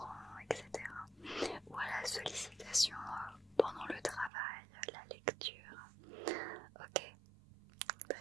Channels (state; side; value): drops out; left; at 4.3 s